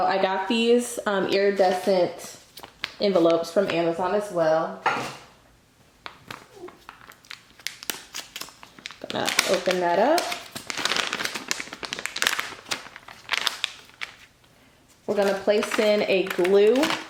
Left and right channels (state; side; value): identical; both; correlation 1.00